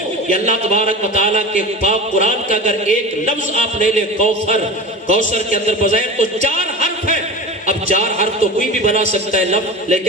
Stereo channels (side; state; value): both; normal; correlation 0.31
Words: یہ اللہ تبارک و تعالیٰ کے پاک قرآن کا اگر ایک لفظ آپ لے لیں کوثر کے اندر بظاہر تو 4 حرف ہے، اب 4 حرف تو کوئی بھی بنا سکتا ہے لفظ،